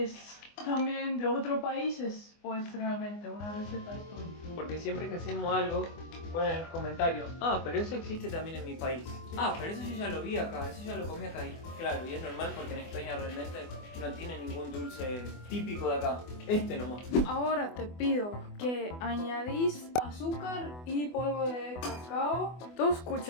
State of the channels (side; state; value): right; late; 24 ms